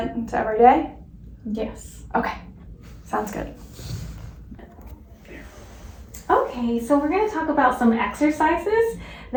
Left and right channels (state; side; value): identical; both; correlation 1.00